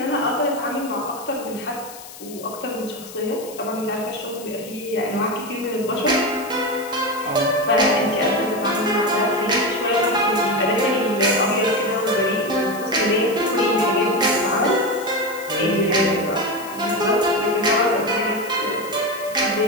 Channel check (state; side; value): noise; left; hiss, 16 dB below the sound